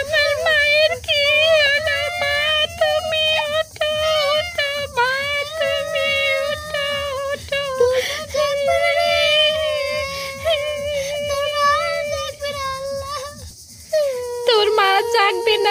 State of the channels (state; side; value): identical; both; correlation 1.00